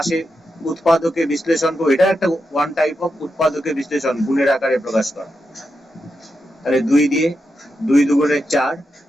উৎপাদকের বিশ্লেষণ করবো। এটা একটা ওয়ান টাইপ অফ উৎপাদকের বিশ্লেষণ, গুণের আকারে প্রকাশ করা। তাহলে 2 দিয়ে 2 দুগুণে 4,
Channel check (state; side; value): normal; both; correlation 0.87